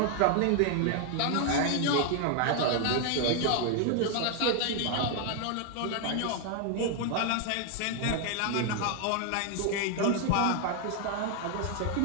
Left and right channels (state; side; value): different; both; correlation 0.00